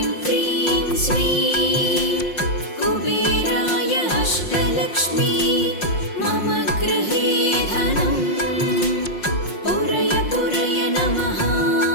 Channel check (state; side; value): late; right; 5.6 ms